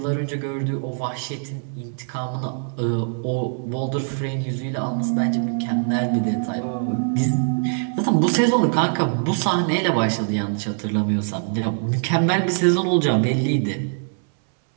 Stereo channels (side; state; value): left; silent; 64 dB below the other